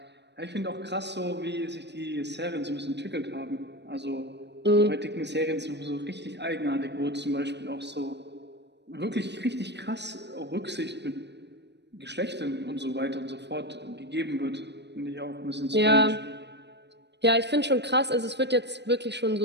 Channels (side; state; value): left; late; 0.50 ms